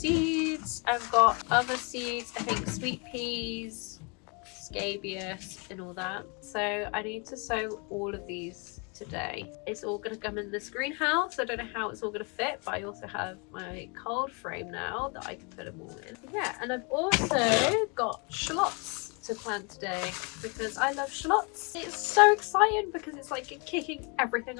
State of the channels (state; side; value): quieter; right; 33.1 dB